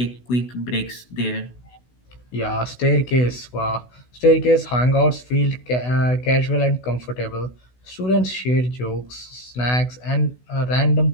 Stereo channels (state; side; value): late; right; 16 ms